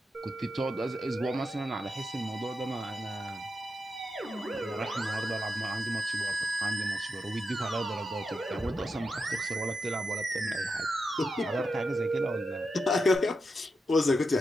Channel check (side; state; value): both; normal; correlation 0.87